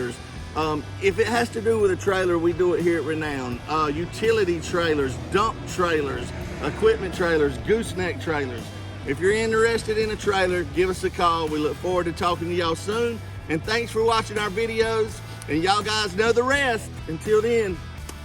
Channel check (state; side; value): identical; both; correlation 1.00